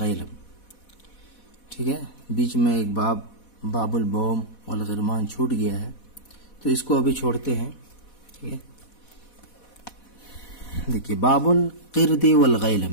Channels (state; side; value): late; right; 4.1 ms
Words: ٹھیک ہے، بیچ میں ایک باب البوم والغرمان چھوٹ گیا ہے، تو اس کو ابھی چھوڑتے ہیں۔ ٹھیک ہے، دیکھیے باب القرد